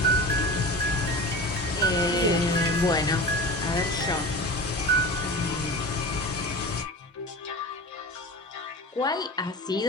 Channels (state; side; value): normal; both; correlation 0.32